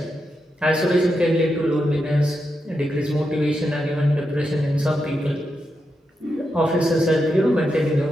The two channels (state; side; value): normal; both; correlation 0.86